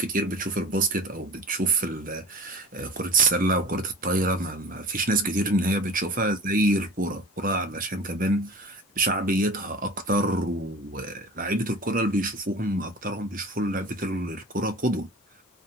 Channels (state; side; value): normal; both; correlation 0.39